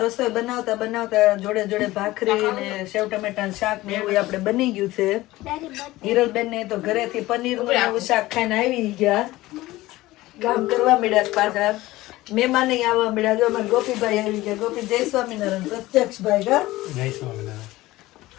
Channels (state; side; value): quieter; right; 17.9 dB